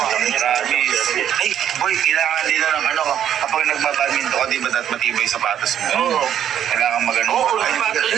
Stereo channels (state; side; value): quieter; left; 10.0 dB